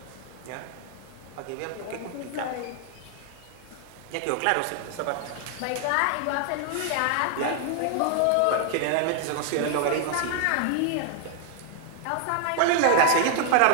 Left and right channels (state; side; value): different; both; correlation 0.00